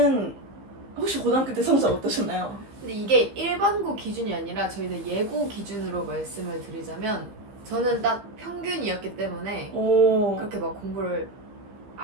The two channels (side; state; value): left; late; 15 ms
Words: 혹시 고등학교 때 성적 어떠셨나요? 근데 이게 일반고 기준이 아니라 저희는 예고 기준으로 말씀을 드리자면 저는 딱 평균이었기 때문에 오. 그렇게 막 공부를